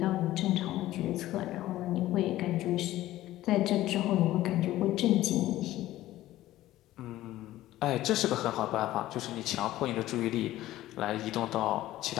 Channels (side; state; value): right; quieter; 15.1 dB